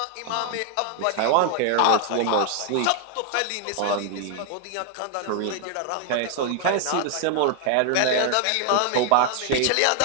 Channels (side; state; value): both; different; correlation 0.00